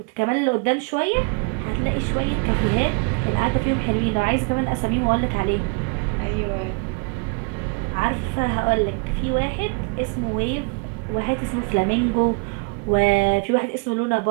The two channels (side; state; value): left; quieter; 33.0 dB